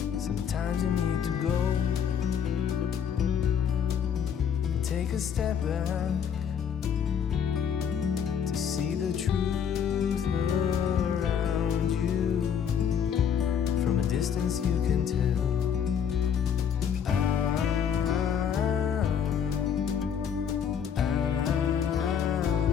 Sometimes you need to go and take a step back to see the truth around you. From a distance you can tell.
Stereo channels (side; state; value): right; quieter; 7.9 dB